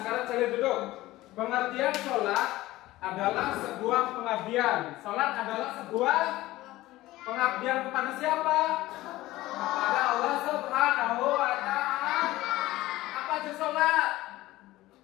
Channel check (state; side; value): quieter; right; 17.3 dB